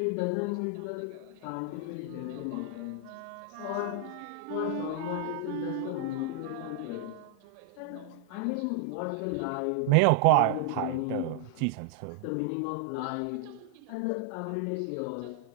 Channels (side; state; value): both; different; correlation 0.00